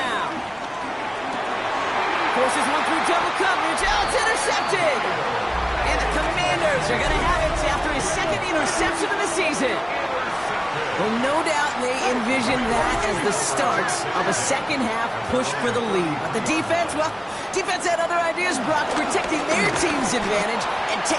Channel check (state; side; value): identical; both; correlation 1.00